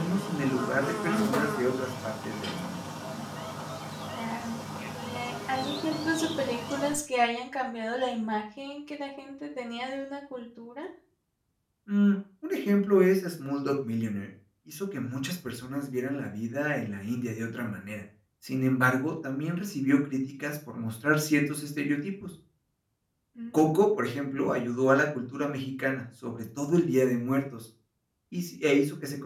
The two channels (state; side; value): identical; both; correlation 1.00